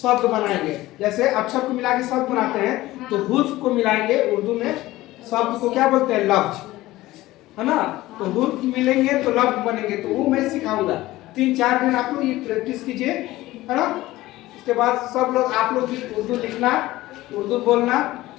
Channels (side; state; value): right; quieter; 17.3 dB